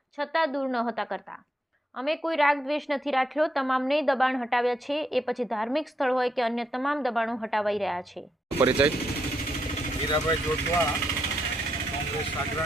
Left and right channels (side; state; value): both; normal; correlation 0.79